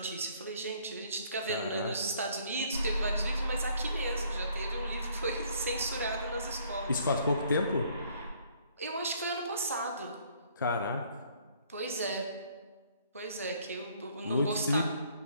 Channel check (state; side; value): inverted; both; correlation -0.62